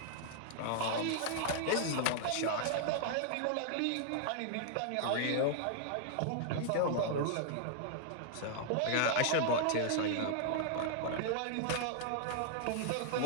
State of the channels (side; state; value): both; different; correlation -0.01